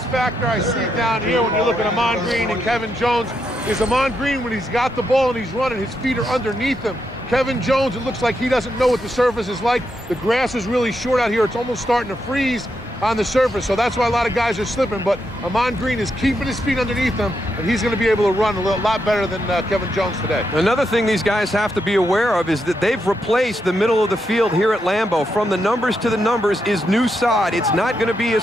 factor I see down here when you look at Ahman Green and Kevin Jones is Ahman Green, when he's got the ball and he's running, his feet are underneath him. Kevin Jones, it looks like he doesn't know what the surface is like. The grass is really short out here. It's almost starting to freeze on the surface, so that's why a lot of guys are slipping. But Ahman Green is keeping his feet underneath him, and he's going to be able to run a lot better than Kevin Jones today. Another thing these guys have to be aware of is that they've replaced the middle of the field here at Lambeau. From the numbers to the numbers is new sod. It's not going to be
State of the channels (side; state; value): both; normal; correlation 0.82